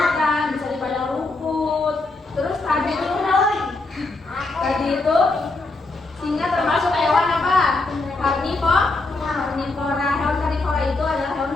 bisa di padang rumput. Terus tadi itu singa termasuk hewan apa? Karnivora. Hewan karnivora itu adalah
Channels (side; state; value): right; quieter; 3.3 dB